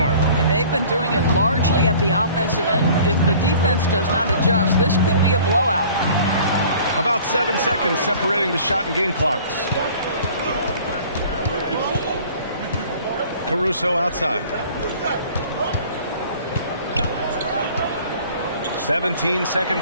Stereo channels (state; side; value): inverted; both; correlation -0.49